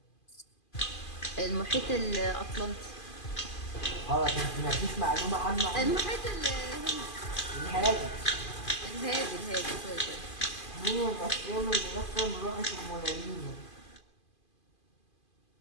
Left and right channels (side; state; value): right; late; 2.5 ms